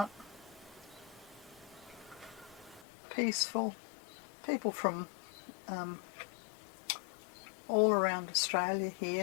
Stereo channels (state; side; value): drops out; right; at 2.9 s